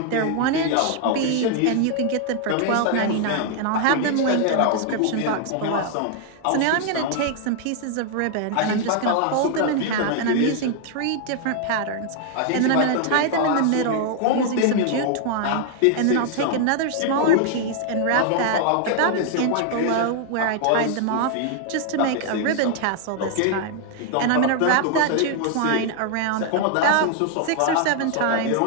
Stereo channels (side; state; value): both; different; correlation 0.00